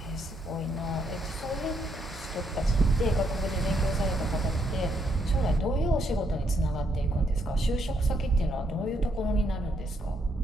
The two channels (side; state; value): both; normal; correlation 0.75